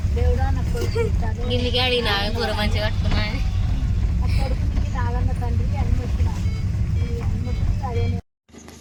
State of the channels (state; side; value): identical; both; correlation 1.00